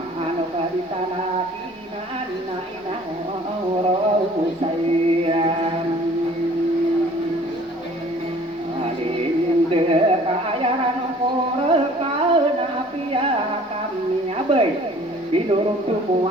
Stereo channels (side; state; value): both; normal; correlation 0.52